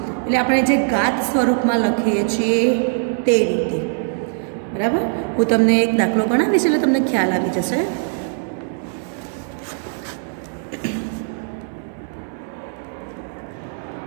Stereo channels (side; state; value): left; silent; 65 dB below the other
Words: એટલે આપણે જે ઘાત સ્વરૂપમાં લખીએ છીએ તે રીતે. બરાબર, હું તમને એક દાખલો ગણાવીશ એટલે તમને ખ્યાલ આવી જશે.